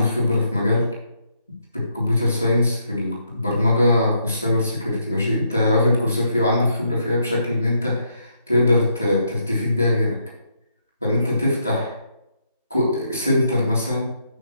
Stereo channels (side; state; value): both; inverted; correlation -0.76